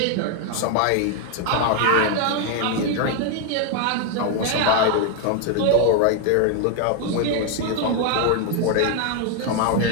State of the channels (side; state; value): both; different; correlation 0.01